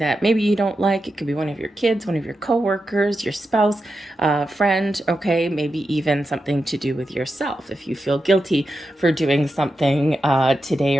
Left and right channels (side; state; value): both; normal; correlation 0.89